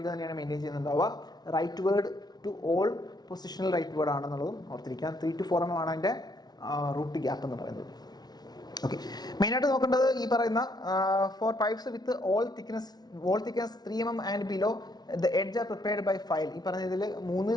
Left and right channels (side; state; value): right; late; 0.19 ms